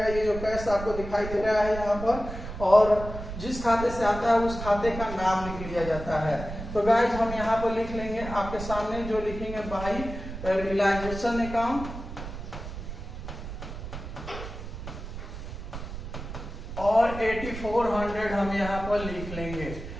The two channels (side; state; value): right; noise; rumble, 9 dB below the sound